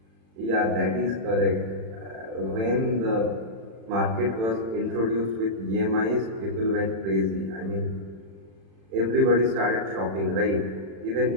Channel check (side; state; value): left; late; 36 ms